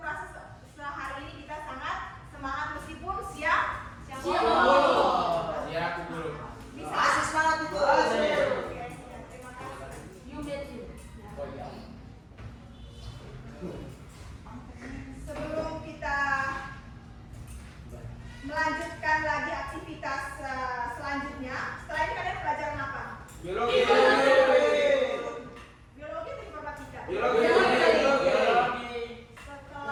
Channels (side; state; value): both; identical; correlation 1.00